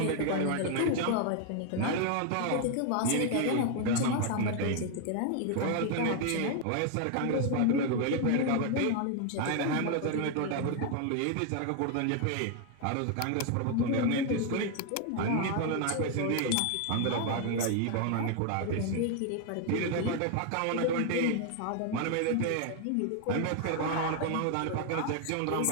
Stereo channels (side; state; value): both; different; correlation 0.00